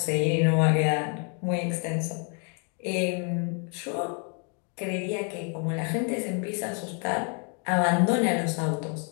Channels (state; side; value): quieter; right; 39.2 dB